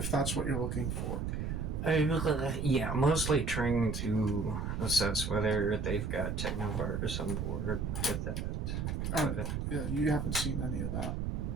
that's what you're looking for. Yeah, mostly trying to assess whether they've got technovirus on board with that. Yeah, you haven't seen any of that.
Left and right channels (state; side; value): noise; right; rumble, 2 dB below the sound